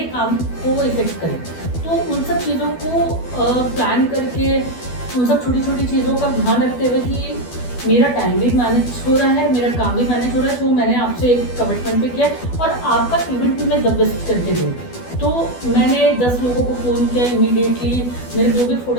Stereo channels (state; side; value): late; right; 12 ms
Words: काम को इफेक्ट करे. तो उन सब चीज़ों को प्लान करके, उन सब छोटी छोटी चीज़ों का ध्यान रखते हुए कि मेरा टाइम भी मैनेज हो रहा है, मेरा काम भी मैनेज हो रहा है, तो मैंने आपसे एक कमिटमेंट पे किया और आपका इवेंट भी मैं द बेस्ट करके दूँ. तो मैंने 10 लोगों को फ़ोन किया इमीडिएटली. मेरे जो भी